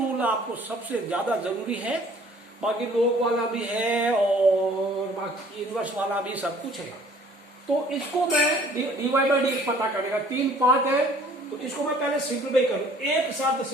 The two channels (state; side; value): normal; both; correlation 0.55